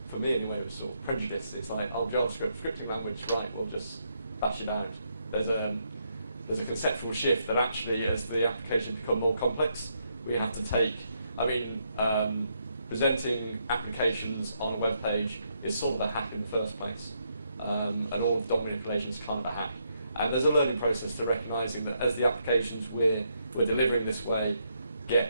for me anyway, was sort of prejudice. It's like, oh, JavaScript, scripting language, right, we'll just bash it out. There's a conceptual shift that actually, as the applications become more complex, we have to take, presenting applications on a web page is sort of a hack in the first place. And all of DOM manipulation is kind of a hack. And there's a learning process to recognizing that as the applications we're delivering this way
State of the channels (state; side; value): inverted; both; correlation -0.77